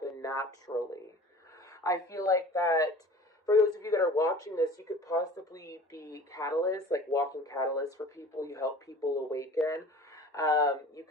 naturally. I feel like that for those of you that are watching this, you could possibly be catalysts, like walking catalysts for people. You help people awaken. You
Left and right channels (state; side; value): normal; both; correlation 0.43